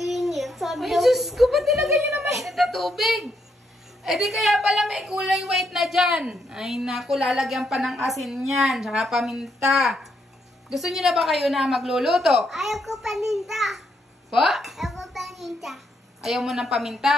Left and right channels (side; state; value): both; normal; correlation 0.77